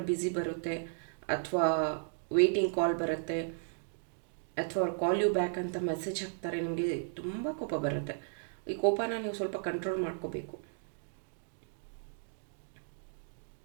ಬ್ಯುಸಿ ಬರುತ್ತೆ ಅಥವಾ ವೇಟಿಂಗ್ ಕಾಲ್ ಬರುತ್ತೆ ಅಥವಾ ಅವ್ರು ಕಾಲ್ ಯು ಬ್ಯಾಕ್ ಅಂತ ಮೆಸೇಜ್ ಹಾಕ್ತಾರೆ. ನಿಮಗೆ ತುಂಬ ಕೋಪ ಬರುತ್ತೆ. ಈ ಕೋಪನ ನೀವು ಸ್ವಲ್ಪ ಕಂಟ್ರೋಲ್ ಮಾಡ್ಕೋಬೇಕು.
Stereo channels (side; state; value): left; silent; digital silence